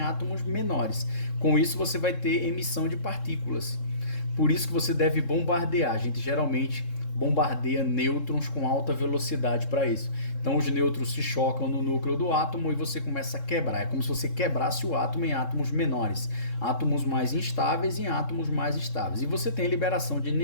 menores. Com isso você vai ter emissão de partículas. Por isso que você deve bombardear. A gente geralmente bombardeia nêutrons com alta velocidade para isso. Então os nêutrons se chocam no núcleo do átomo e você começa a quebrar. É como se você quebrasse o átomo em átomos menores, átomos mais instáveis em átomos mais estáveis. E você tem liberação de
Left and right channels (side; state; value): right; late; 3.7 ms